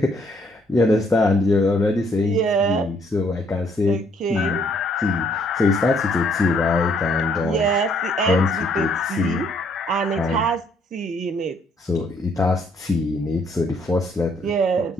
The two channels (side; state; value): both; normal; correlation 0.67